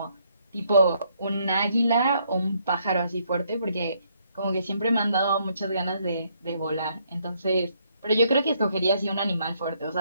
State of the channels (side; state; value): both; inverted; correlation -0.71